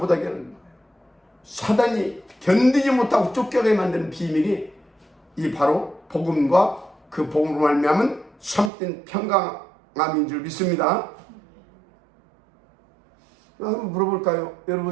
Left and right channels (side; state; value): left; drops out; at 8.7 s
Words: 하는 거예요. 사단이 견디지 못하고 쫓겨가게 만드는 비밀이 이 바로 복음과 그 복음으로 말미암은 참된 평강함인 줄 믿습니다. 한번 물어볼까요?